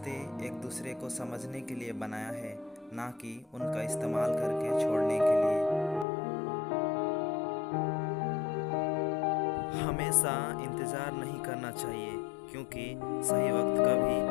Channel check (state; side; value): drops out; right; at 6.1 s